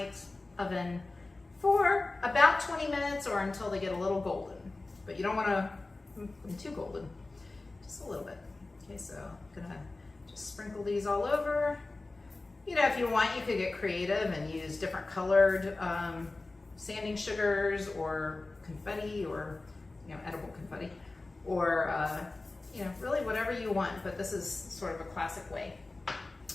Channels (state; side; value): quieter; right; 3.2 dB